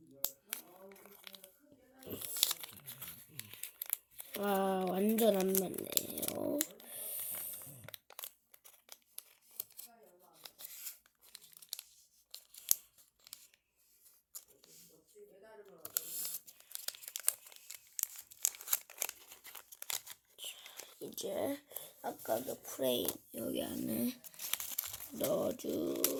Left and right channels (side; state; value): both; identical; correlation 1.00